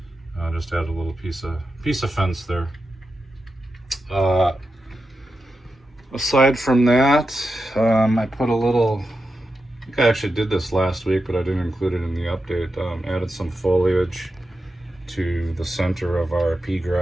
I just added a little piece of fence there. Aside from that, I put a little, I think I actually did this last week, but I didn't include it in the update. Added some foliage to the center of our pea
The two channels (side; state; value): both; normal; correlation 0.89